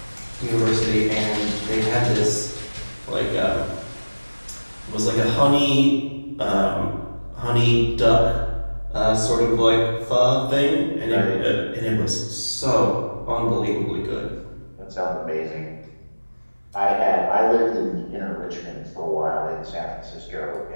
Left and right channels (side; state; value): both; inverted; correlation -1.00